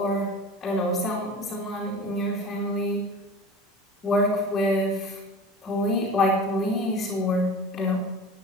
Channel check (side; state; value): both; normal; correlation 0.36